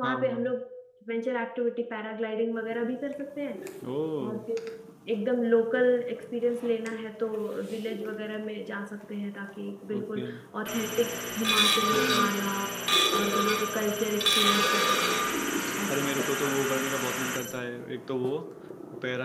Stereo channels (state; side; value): identical; both; correlation 1.00